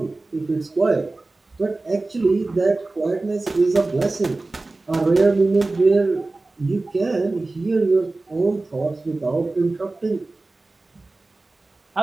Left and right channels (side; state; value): left; quieter; 3.2 dB